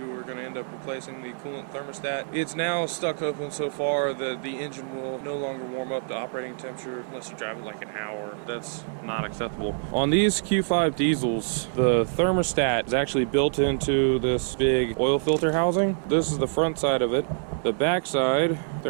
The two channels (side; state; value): left; silent; digital silence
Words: were going to end up replacing the coolant thermostat. It's now stuck open so far that the engine will no longer warm up to operating temperature unless you drive it like an hour. That's not acceptable. On these Q5 diesels, the thermostat is actually built into this big oil filter housing. This is the front side of it. The back side,